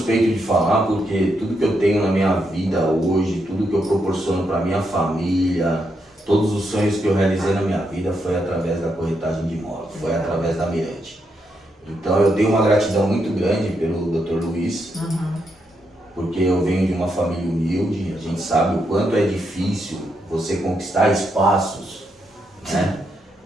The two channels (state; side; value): normal; both; correlation 0.80